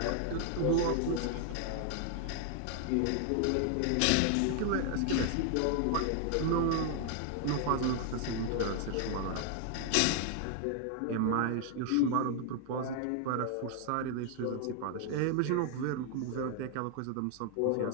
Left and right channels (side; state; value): both; different; correlation 0.00